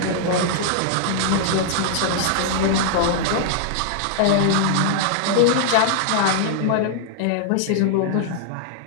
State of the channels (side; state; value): both; different; correlation -0.01